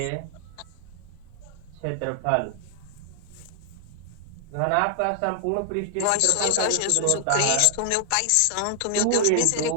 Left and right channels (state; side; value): different; both; correlation 0.00